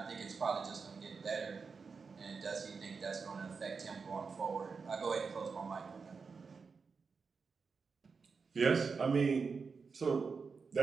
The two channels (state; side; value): quieter; left; 5.1 dB